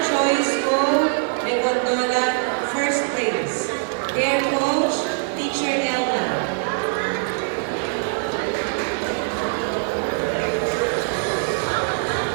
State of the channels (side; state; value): left; silent; 64 dB below the other